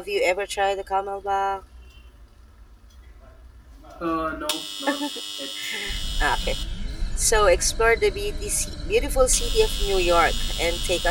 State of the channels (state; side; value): identical; both; correlation 1.00